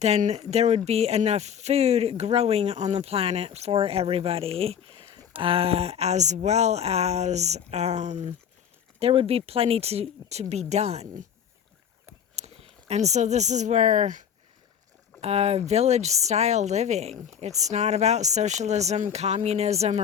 there would be enough food growing on the planet for everybody, as well as there would be plenty to be done. And so this is where village-style living, it's not about socialism, communism,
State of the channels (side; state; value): right; quieter; 8.3 dB